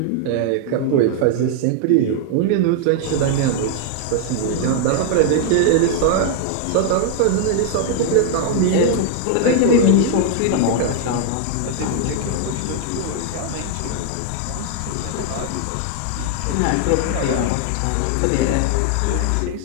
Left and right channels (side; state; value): both; different; correlation 0.00